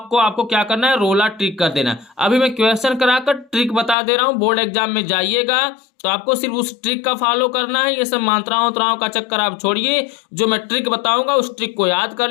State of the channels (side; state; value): right; drops out; at 4.0 s